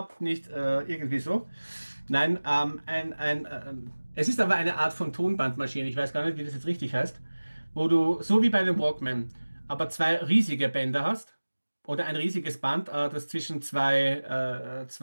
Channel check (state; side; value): inverted; both; correlation -1.00